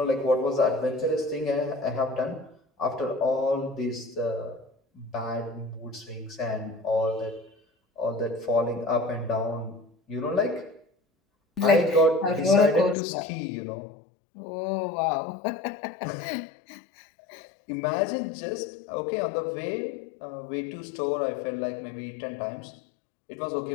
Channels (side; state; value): right; drops out; at 13.0 s